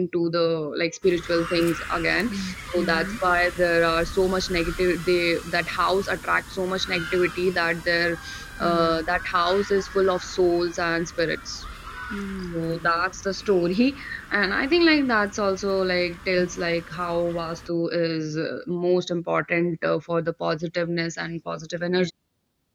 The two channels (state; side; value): identical; both; correlation 1.00